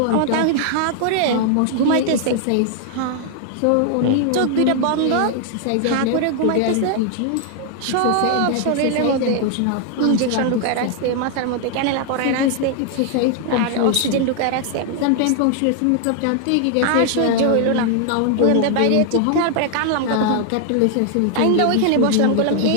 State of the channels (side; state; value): both; different; correlation 0.00